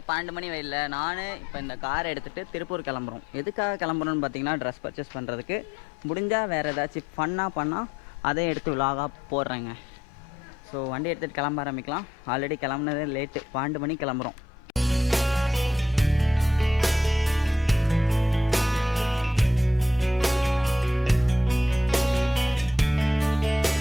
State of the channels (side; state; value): both; normal; correlation 0.77